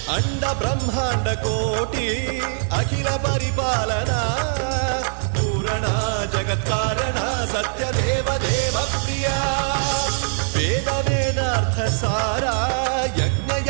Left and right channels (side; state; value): left; silent; 60 dB below the other